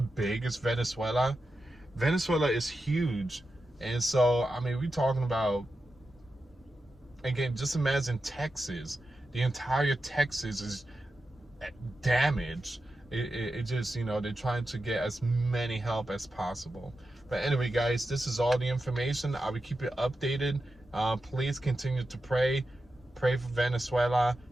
is Venezuela? Venezuela is huge. And so, I mean, we're talking about, again, just imagine Texas. The entire Texas is damaged. It just, they're trying to get as many help as possible. But anyway, guys, this is all the information. I will keep you updated. Please continue to pray for Venezuela,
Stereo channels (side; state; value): both; normal; correlation 0.90